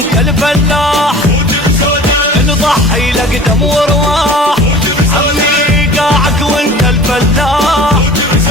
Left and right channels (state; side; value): normal; both; correlation 0.44